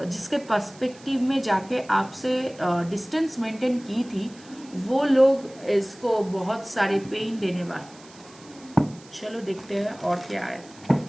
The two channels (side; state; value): right; noise; hiss, 23 dB below the sound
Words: जिसके पर्सपेक्टिव में जाके आपसे डिस्टेंस मेंटेन की थी, वो लोग इसको बहुत सारे पेन देने वाले। चलो देखते हैं और क्या है।